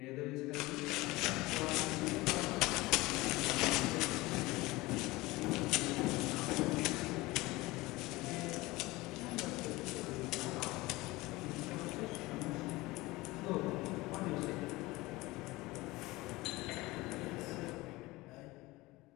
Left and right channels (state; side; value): quieter; right; 20.6 dB